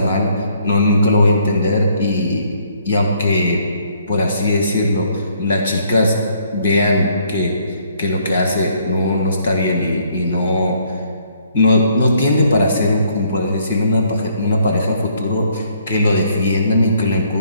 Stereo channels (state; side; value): inverted; both; correlation -0.66